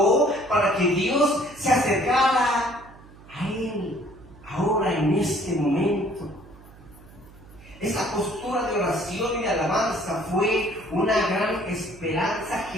para que Dios se acercara a él ahora en este momento. Esa postura de oración y de alabanza fue una gran esperanza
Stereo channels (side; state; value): right; noise; hum, 22 dB below the sound